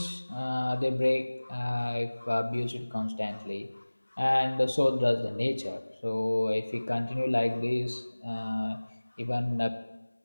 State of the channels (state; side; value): inverted; both; correlation -1.00